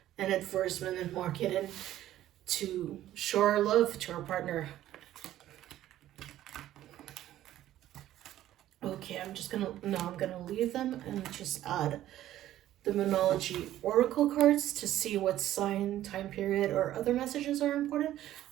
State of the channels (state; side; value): quieter; left; 13.3 dB